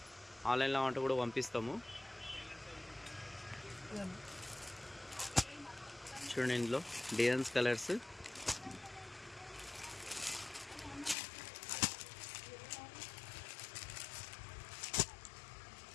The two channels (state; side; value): drops out; right; at 11.2 s